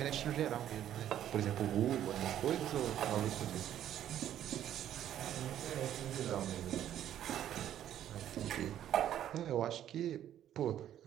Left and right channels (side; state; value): left; quieter; 11.2 dB